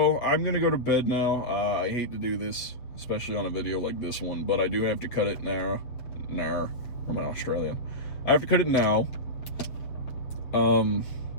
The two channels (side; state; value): right; late; 7.8 ms